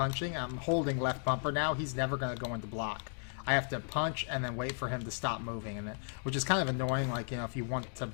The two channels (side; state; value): right; silent; 54 dB below the other